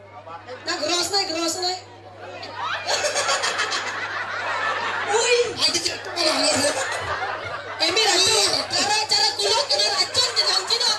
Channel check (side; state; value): both; identical; correlation 1.00